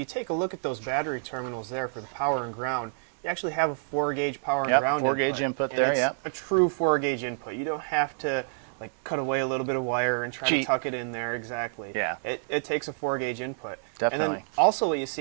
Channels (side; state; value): left; silent; digital silence